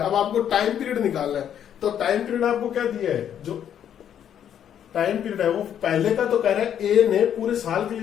अब आपको टाइम पीरियड निकालना है, तो टाइम पीरियड आपको क्या दिया है, जो टाइम पीरियड है वो पहले का तो कह रहा है ए ने पूरे साल के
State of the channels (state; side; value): quieter; right; 9.5 dB